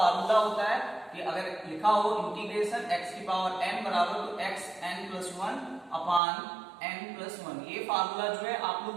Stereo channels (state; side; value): drops out; left; at 6.2 s